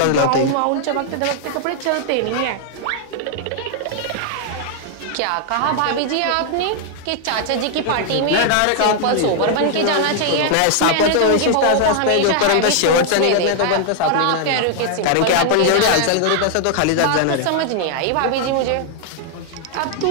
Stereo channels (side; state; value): both; different; correlation 0.00